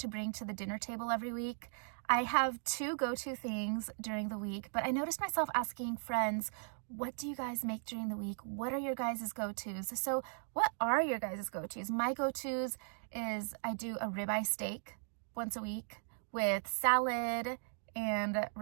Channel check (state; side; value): silent; left; 53 dB below the other